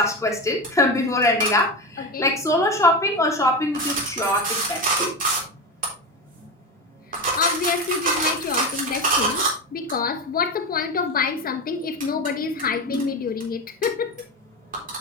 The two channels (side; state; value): both; normal; correlation 0.20